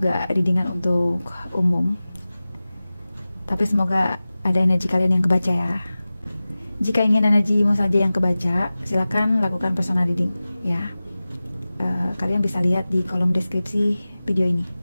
readingan untuk umum. Tapi semoga ada energi kalian yang kebaca ya. Jika ingin energimu saja yang kebaca, silakan lakukan personal reading ya. Kalian bisa lihat di kolom deskripsi video ini.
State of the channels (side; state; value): both; inverted; correlation -0.97